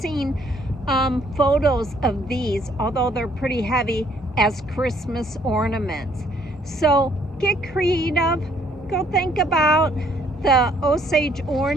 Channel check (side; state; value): both; normal; correlation 0.65